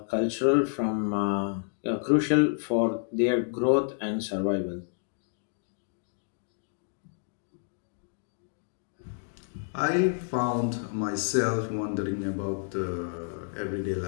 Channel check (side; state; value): right; silent; digital silence